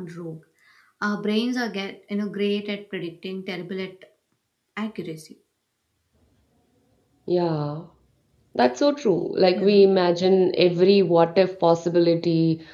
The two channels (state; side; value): identical; both; correlation 1.00